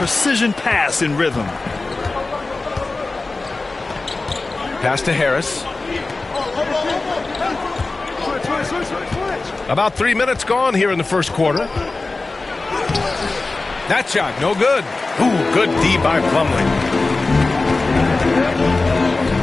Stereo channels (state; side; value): quieter; right; 3.5 dB